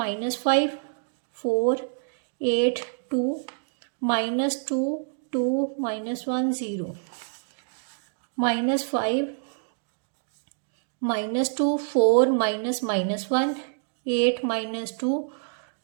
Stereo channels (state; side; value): silent; left; digital silence